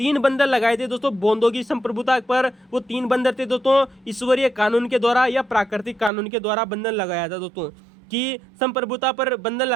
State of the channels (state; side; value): drops out; left; at 6.1 s